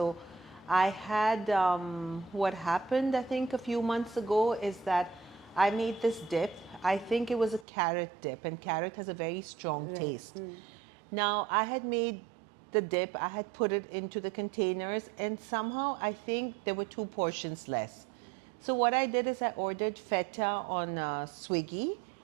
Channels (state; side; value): drops out; left; at 7.7 s